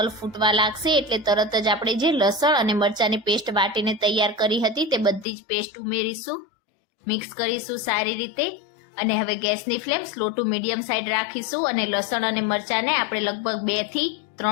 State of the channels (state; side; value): drops out; right; at 5.2 s